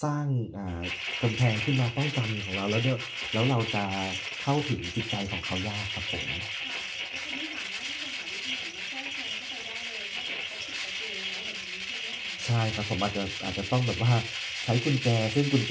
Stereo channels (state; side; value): identical; both; correlation 1.00